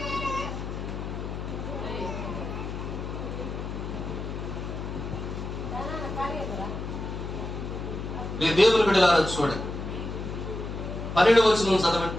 దేవుని బిడ్డలారా చూడండి, 12వ వచనం చదవండి.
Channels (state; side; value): noise; left; hum, 6 dB below the sound